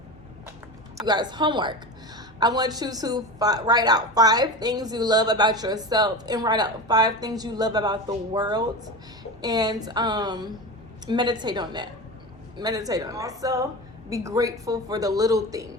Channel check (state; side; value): normal; both; correlation 0.26